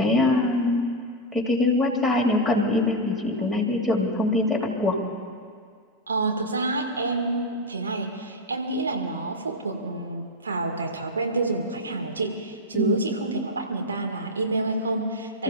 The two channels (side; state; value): both; normal; correlation 0.05